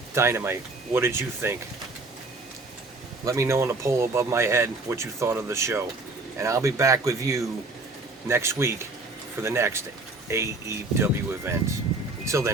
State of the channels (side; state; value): left; quieter; 3.2 dB